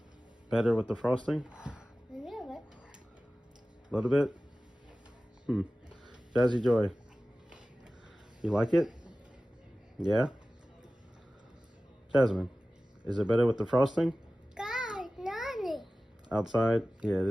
Better with the frosting? A little bit. A little bit? Jazzy Joy, you like it? Yeah? Jasmine, is it better with the frosting? God, Nani. Outside? Yeah,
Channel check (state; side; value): normal; both; correlation 0.96